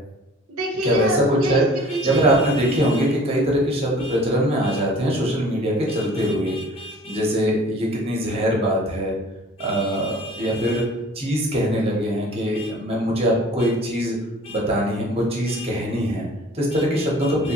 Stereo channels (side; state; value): both; normal; correlation 0.49